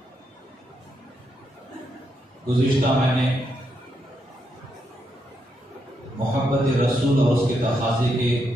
گزشتہ میں نے محبت رسول اور اس کے تقاضے کے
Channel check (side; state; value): both; normal; correlation 0.80